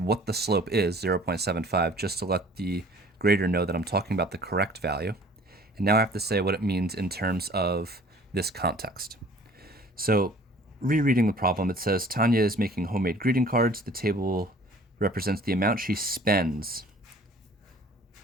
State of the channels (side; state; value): both; normal; correlation 0.51